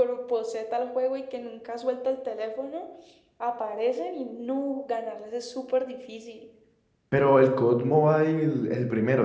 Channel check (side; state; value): both; identical; correlation 1.00